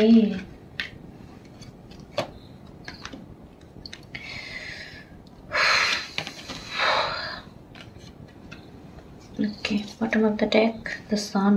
okay, bottom of the deck, the sun.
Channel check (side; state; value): both; identical; correlation 1.00